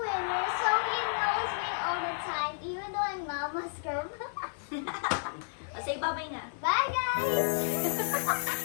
winner. So he always win all the time, even though I'm Mama's girl. say bye-bye na.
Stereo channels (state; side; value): silent; right; digital silence